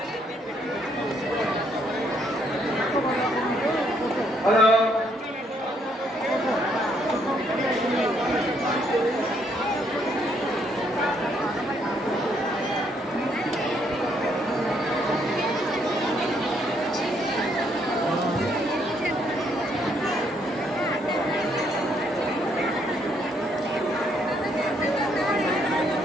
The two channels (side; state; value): both; normal; correlation 0.71